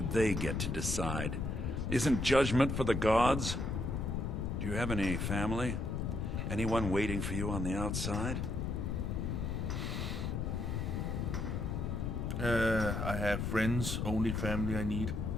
they get to decide? Isn't judgment for the gods? Do you have any family? Anyone waiting for you on the outside? I have friends, only family I need.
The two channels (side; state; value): left; noise; rumble, 1 dB below the sound